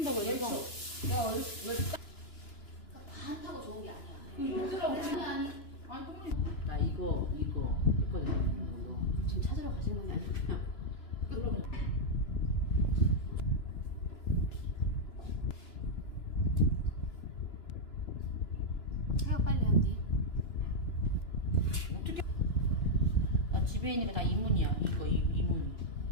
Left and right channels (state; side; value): late; right; 2.9 ms